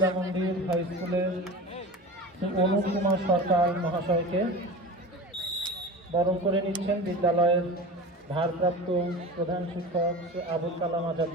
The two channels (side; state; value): both; normal; correlation 0.31